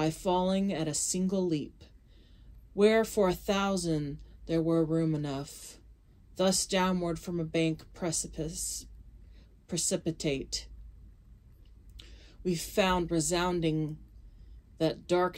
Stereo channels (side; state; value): both; identical; correlation 1.00